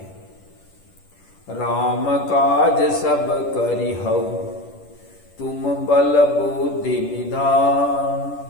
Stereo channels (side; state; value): right; late; 10 ms